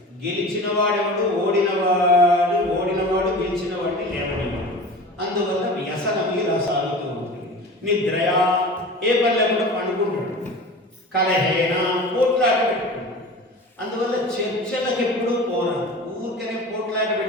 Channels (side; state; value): both; normal; correlation 0.36